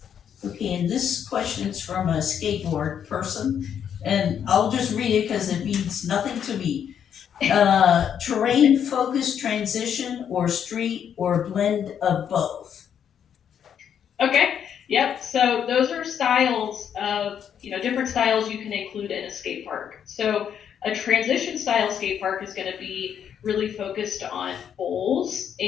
Okay, and this question is from a skateboard person, and I'll just read it because it means nothing to me. Terrain focused transition or street or blend of both? Okay, yep, so those are styles of, different styles you can include in a skate park. So a transition style skate park is gonna be really focused on bowls,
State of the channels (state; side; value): quieter; right; 8.5 dB